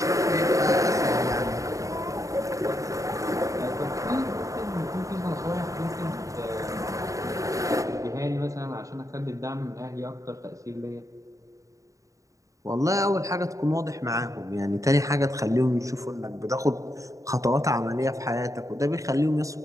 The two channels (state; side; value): late; left; 0.16 ms